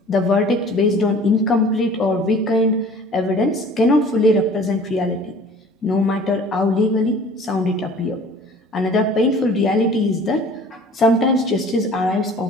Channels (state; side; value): normal; both; correlation 0.48